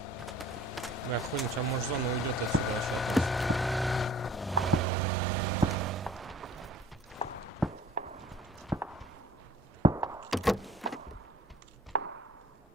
Бля, хуй, сейчас может зона уйдет отсюда вообще.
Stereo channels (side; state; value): both; normal; correlation 0.50